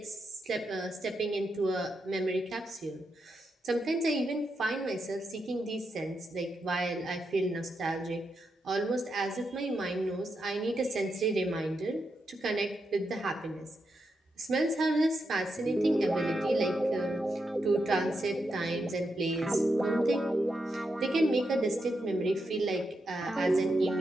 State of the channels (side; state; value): both; normal; correlation 0.85